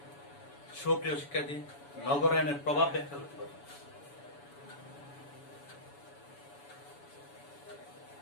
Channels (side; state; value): right; late; 7.0 ms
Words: সুপ্রিয় শিক্ষার্থী, নগরায়নের প্রভাব ব্যাখ্যা করতে পারবো।